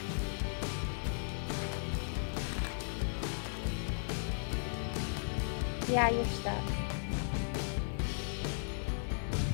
Yeah, you're stuck.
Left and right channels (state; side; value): silent; right; digital silence